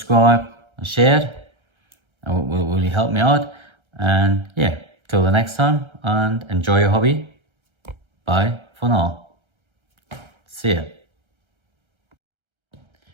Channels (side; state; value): left; late; 1.3 ms